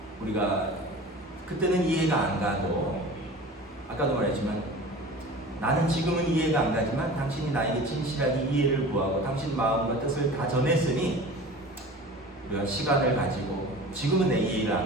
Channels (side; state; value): both; normal; correlation 0.39